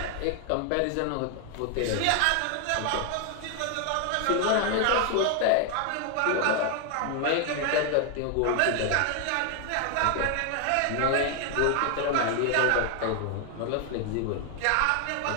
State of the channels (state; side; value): different; both; correlation 0.00